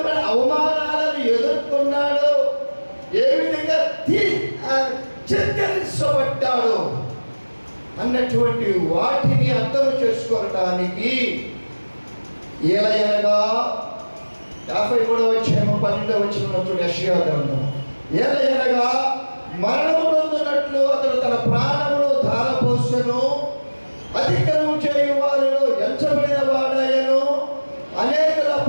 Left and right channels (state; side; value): inverted; both; correlation -1.00